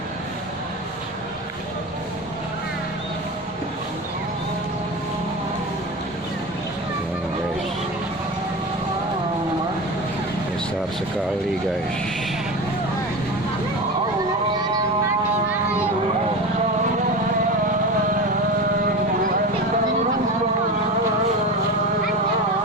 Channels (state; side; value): normal; both; correlation 0.27